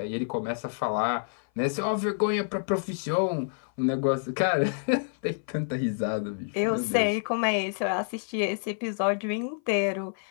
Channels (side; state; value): right; silent; 57 dB below the other